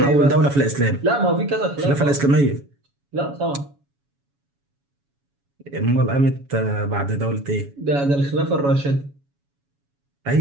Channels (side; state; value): left; late; 7.1 ms